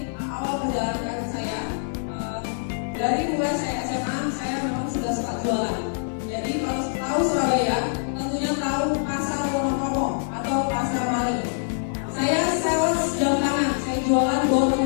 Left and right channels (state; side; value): silent; right; digital silence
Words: awal perjalanan saya. Dari mulai saya SMA, saya memang sudah suka jualan. Jadi kalau tahu Surabaya, tentunya tahu pasar Wonosobo atau pasar Mari. Saya sales jam tangan, saya jualan door to